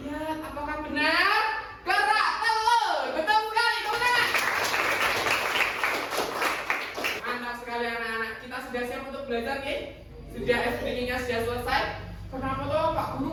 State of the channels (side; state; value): both; identical; correlation 1.00